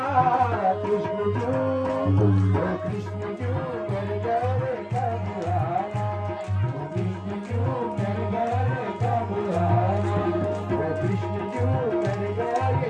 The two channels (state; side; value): identical; both; correlation 1.00